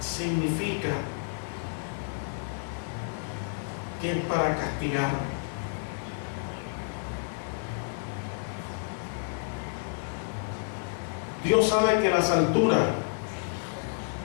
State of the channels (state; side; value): silent; right; digital silence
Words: significa que es para castigar. Dios sabe que las alturas